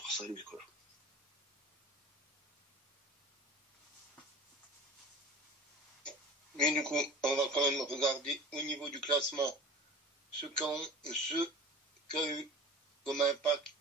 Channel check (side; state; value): both; normal; correlation 0.37